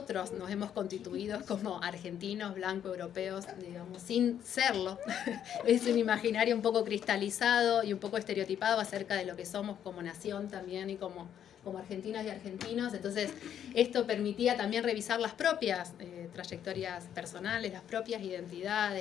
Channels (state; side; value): quieter; right; 9.6 dB